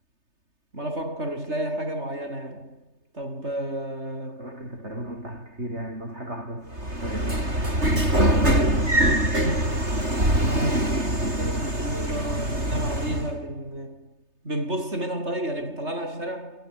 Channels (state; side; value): late; left; 3.3 ms